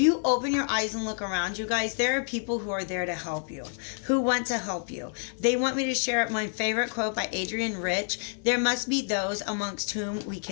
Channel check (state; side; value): silent; right; 59 dB below the other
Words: open your eyes and look around you guys, there are people who are there to help you, who want to help you. They want me to share my favorite quote by Adrienne Rich. There must be those amongst whom we